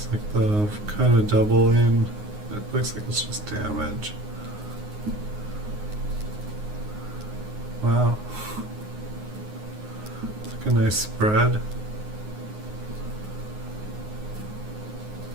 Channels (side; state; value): left; late; 9.6 ms